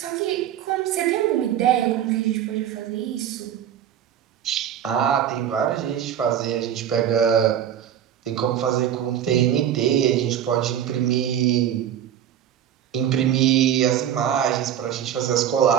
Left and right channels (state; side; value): quieter; left; 10.1 dB